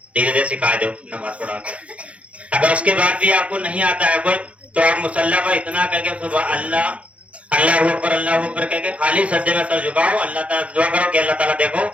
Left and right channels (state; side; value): late; left; 0.063 ms